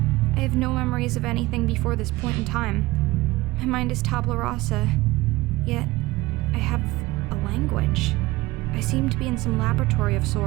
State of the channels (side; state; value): left; quieter; 19.6 dB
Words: I have no memories of anything before this point in time. My mind is tabula rasa, yet I have a language. I seem to be in some laboratory of